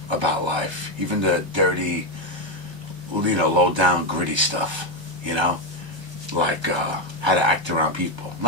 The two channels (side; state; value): left; late; 1.3 ms